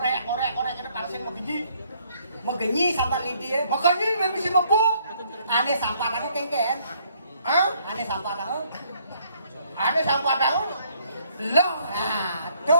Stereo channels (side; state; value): both; inverted; correlation -0.66